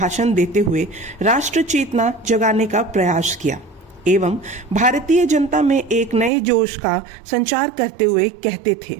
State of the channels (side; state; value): left; drops out; at 6.3 s